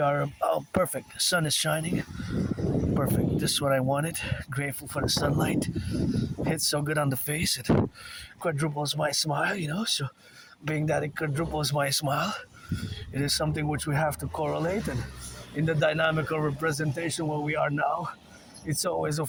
are perfect. The sun is shining. Perfect. This is what I wanted. Grateful for the sunlight. Hits so good on the face. It quadruples my smile, So being that it quadruples my smile, it is something which we have to correlate. And in the dynamical representation where we are now, it's always,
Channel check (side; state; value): both; identical; correlation 1.00